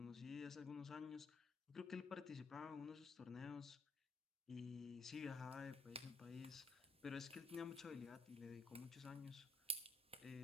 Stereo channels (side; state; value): right; quieter; 3.2 dB